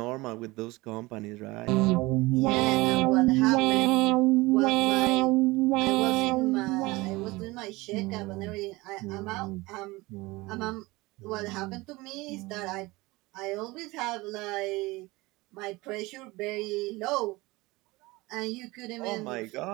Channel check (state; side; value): quieter; left; 21.8 dB